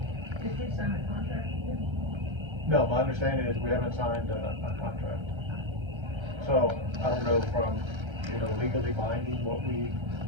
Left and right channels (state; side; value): late; left; 1.3 ms